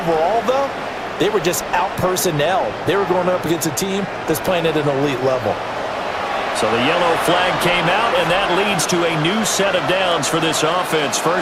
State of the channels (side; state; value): both; identical; correlation 1.00